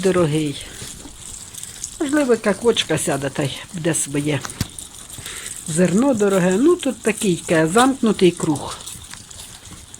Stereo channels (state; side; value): identical; both; correlation 1.00